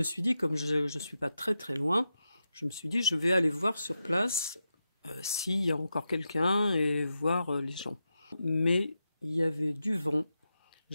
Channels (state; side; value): inverted; both; correlation -0.88